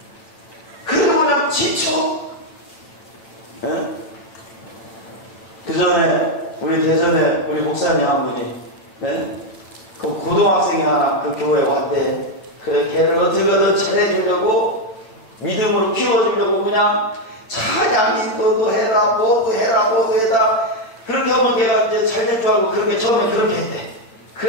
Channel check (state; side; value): late; right; 9.0 ms